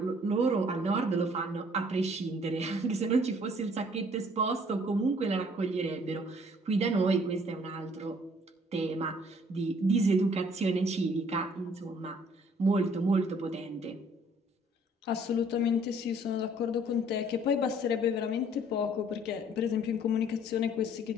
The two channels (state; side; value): normal; both; correlation 0.59